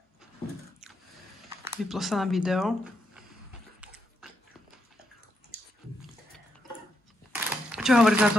Vyplo sa nám video. Čo hovoríš na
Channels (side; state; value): both; normal; correlation 0.80